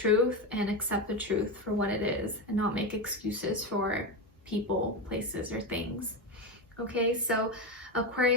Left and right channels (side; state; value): both; normal; correlation 0.15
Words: and accept the truth for what it is and not make excuses for people, places, or things. Okay, so